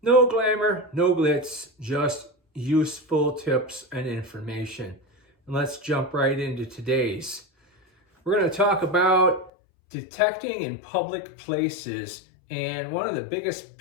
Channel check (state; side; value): drops out; right; at 9.5 s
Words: glamour, no glitz, just useful tips and information. And let's jump right into today's. We're going to talk about detecting in public places and one of the biggest